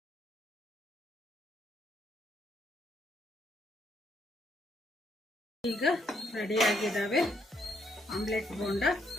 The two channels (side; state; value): both; normal; correlation 0.73